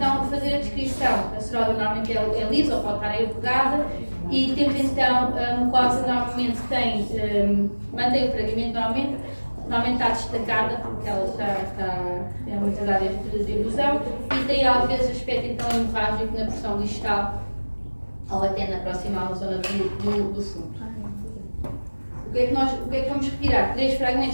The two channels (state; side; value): inverted; both; correlation -1.00